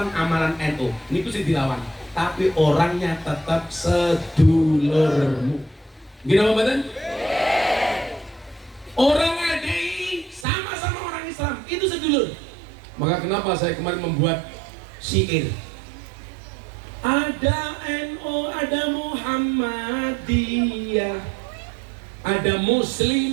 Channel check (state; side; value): drops out; left; at 10.5 s